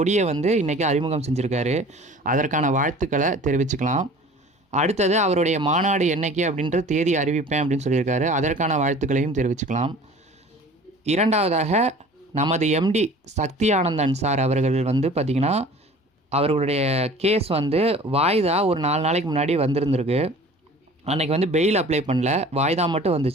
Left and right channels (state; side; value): normal; both; correlation 0.45